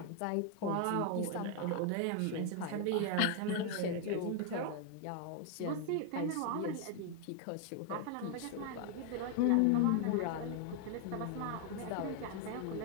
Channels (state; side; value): different; both; correlation 0.00